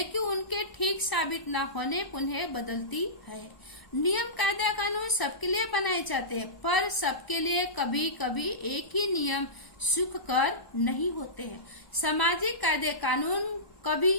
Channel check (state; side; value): late; right; 1.2 ms